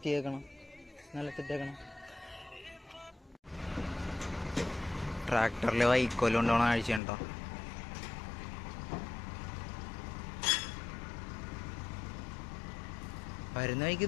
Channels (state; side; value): drops out; right; at 7.0 s